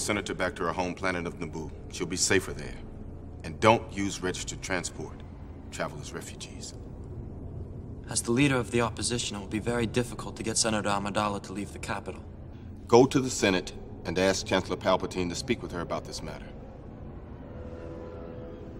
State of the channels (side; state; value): both; identical; correlation 1.00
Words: back to her home planet of Naboo. She'll be safer there. And don't use registered transport. Travel as refugees. As the leader of the opposition, it will be very difficult to get Senator Amidala to leave the capital. Go to the Senate and ask Chancellor Palpatine to speak with her about this matter.